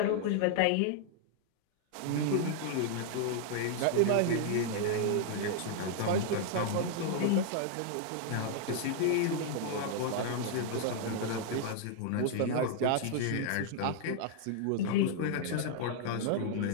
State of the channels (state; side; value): different; both; correlation 0.00